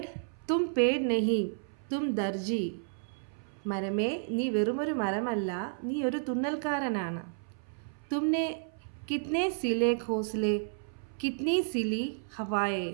തും പേഡ് നെഹി തും ദർജി. മരമേ, നീ വെറുമൊരു മരമല്ല, നീ ഒരു തുന്നൽക്കാരനാണ്. തുമ്നെ കിത്നെ സിലെ ഘോസ്ലെ കിത്നി സിലി ഹവായെ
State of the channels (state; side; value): silent; left; 57 dB below the other